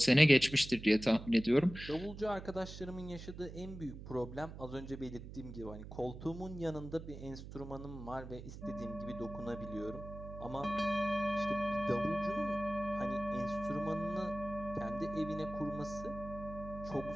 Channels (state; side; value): noise; right; hum, 12 dB below the sound